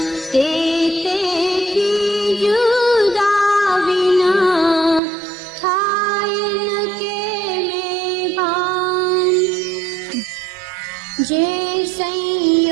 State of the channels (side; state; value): left; drops out; at 5.0 s